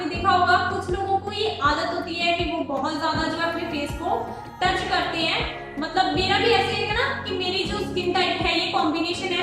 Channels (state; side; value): identical; both; correlation 1.00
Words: देखा होगा कुछ लोगों को ये आदत होती है कि वो बहुत ज्यादा जो है अपने फेस को टच करते हैं। मतलब मेरा भी ऐसे है ना कि मेरी जो स्किन टाइप है, ये कॉम्बिनेशन